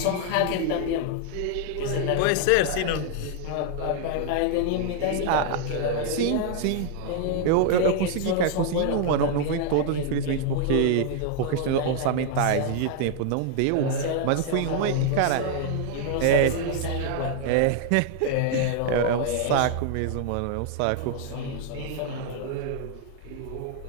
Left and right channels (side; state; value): both; different; correlation 0.00